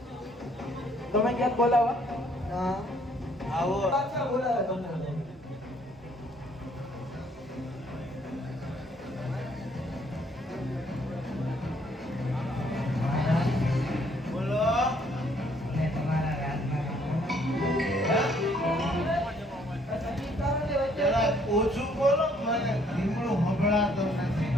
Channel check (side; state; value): both; normal; correlation 0.65